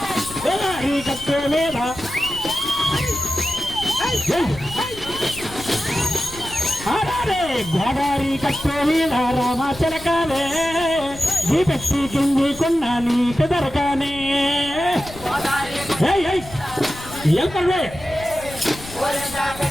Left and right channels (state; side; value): noise; left; rumble, 15 dB below the sound